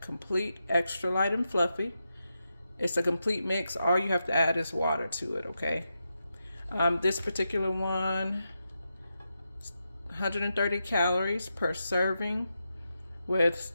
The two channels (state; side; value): inverted; both; correlation -0.87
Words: Complete Extra Light and Fluffy. It's a complete mix. All you have to add is water to it, okay? This particular one, 130 calories per serving with